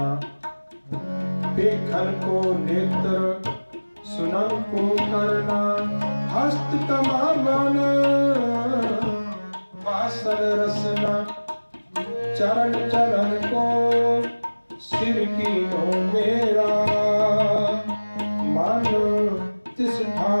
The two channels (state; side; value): inverted; both; correlation -1.00